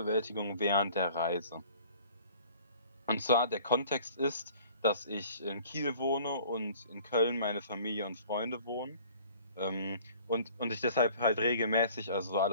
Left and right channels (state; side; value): inverted; both; correlation -0.50